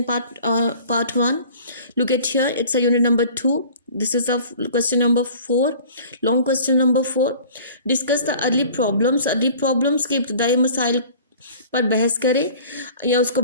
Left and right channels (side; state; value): both; inverted; correlation -0.46